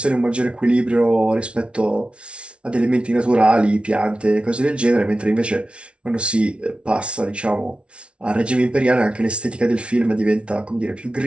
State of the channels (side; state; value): left; late; 0.059 ms